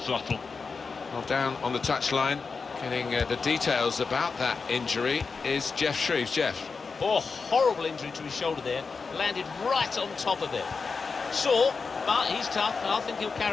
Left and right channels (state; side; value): quieter; right; 4.8 dB